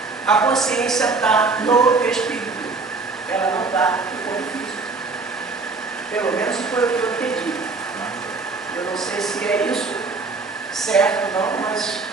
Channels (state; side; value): quieter; left; 4.1 dB